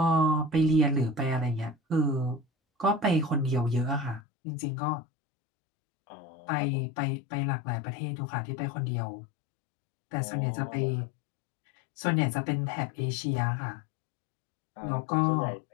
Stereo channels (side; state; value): right; drops out; at 4.2 s